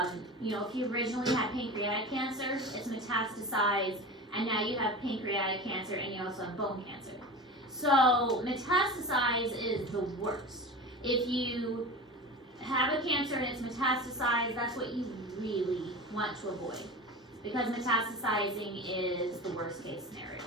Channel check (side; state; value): both; normal; correlation 0.31